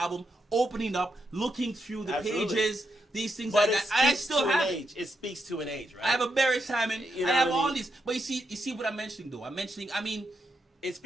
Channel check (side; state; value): both; normal; correlation 0.83